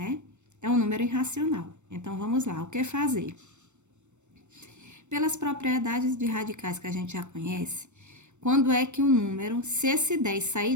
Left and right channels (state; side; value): late; left; 0.84 ms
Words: É um número irracional. Então, vamos lá. O que fazer? Pelas propriedades de radicais que a gente já conhece, quando é que o número, se esse 10 sair